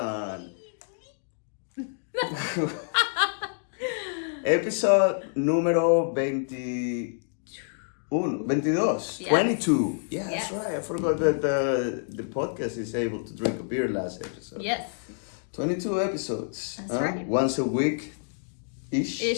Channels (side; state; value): right; silent; digital silence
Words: Episode número 22. Yes. 22. Yeah, yes. That's right. I forgot that the podcast is able to drink a beer last episode. Yes. 22 episodes. That's right. Once a week.